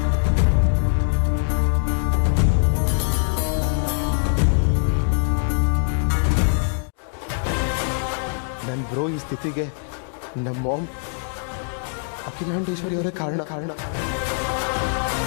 ನನ್ನ ಬ್ರೋ ಈ ಸ್ಥಿತಿಗೆ ನಮ್ಮ ಮಾಮ್ ಅಖಿಲಾಂಡೇಶ್ವರಿ ಅವರೇ ಕಾರಣ.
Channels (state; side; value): silent; right; digital silence